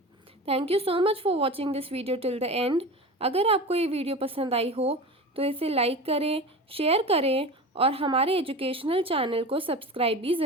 Thank you so much for watching this video till the end. अगर आपको ये वीडियो पसंद आई हो तो इसे लाइक करें, शेयर करें और हमारे एजुकेशनल चैनल को सब्सक्राइब भी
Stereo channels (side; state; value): both; normal; correlation 0.31